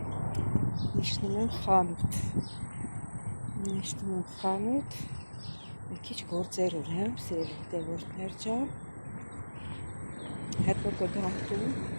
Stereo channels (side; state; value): both; inverted; correlation -1.00